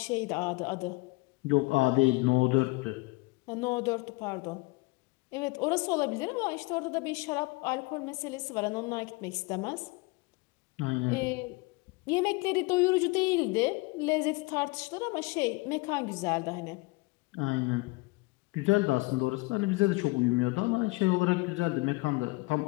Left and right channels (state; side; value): quieter; right; 24.8 dB